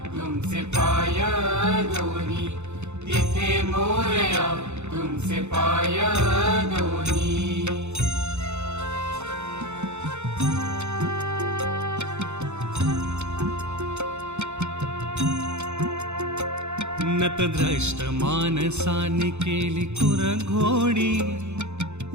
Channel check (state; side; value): late; left; 0.82 ms